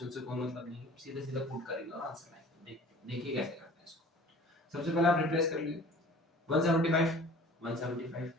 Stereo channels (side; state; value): both; normal; correlation 0.47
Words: से कोई मतलब नहीं है, सीधे सीधा पुट करेंगे और आंसर आएगा। देखिए कैसे करते हैं इसको। सबसे पहले आप रिप्लेस कर लीजिए 175 175